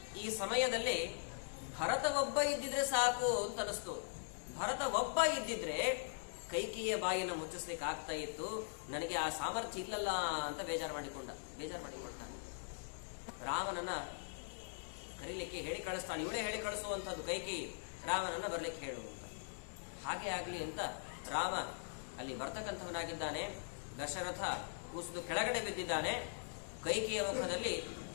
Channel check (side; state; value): right; silent; digital silence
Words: ಈ ಸಮಯದಲ್ಲಿ ಭರತ ಒಬ್ಬ ಇದ್ದಿದ್ರೆ ಸಾಕು ಅಂತ ಅನಿಸ್ತು. ಭರತ ಒಬ್ಬ ಇದ್ದಿದ್ರೆ ಕೈಕೇಯಿಯ ಬಾಯಿನ ಮುಚ್ಚಿಸ್ಲಿಕ್ಕೆ ಆಗ್ತಾ ಇತ್ತು, ನನಗೆ ಆ ಸಾಮರ್ಥ್ಯ ಇಲ್ಲಲ್ಲ ಅಂತ ಬೇಜಾರು ಮಾಡಿಕೊಳ್ತಾನೆ. ರಾಮನನ್ನ ಕರೀಲಿಕ್ಕೆ ಹೇಳಿ ಕಳಿಸ್ತಾನೆ. ಇವಳೇ ಹೇಳಿ ಕಳಿಸುವಂಥದ್ದು ಕೈಕೇಯಿ, ರಾಮನನ್ನ ಬರ್ಲಿಕ್ಕೆ ಹೇಳುವಂತ. ಹಾಗೆ ಆಗ್ಲಿ ಅಂತ ರಾಮ ಅಲ್ಲಿ ಬರ್ತಕ್ಕಂಥವನಾಗಿದ್ದಾನೆ. ದಶರಥ ಕೂಸಿದು ಕೆಳಗಡೆ ಬಿದ್ದಿದ್ದಾನೆ. ಕೈಕೇಯಿಯ ಮುಖದಲ್ಲಿ